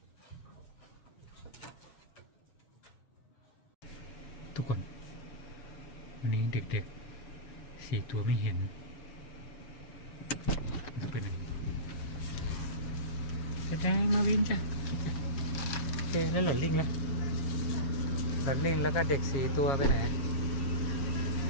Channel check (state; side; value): late; right; 7.2 ms